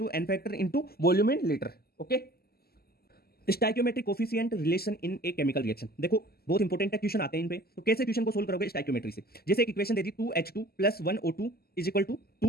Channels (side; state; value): right; late; 0.45 ms